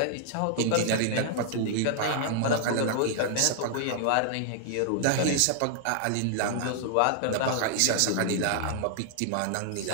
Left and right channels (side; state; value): both; different; correlation -0.01